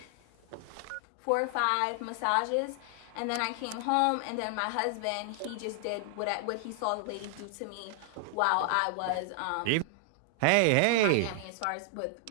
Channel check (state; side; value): different; both; correlation 0.00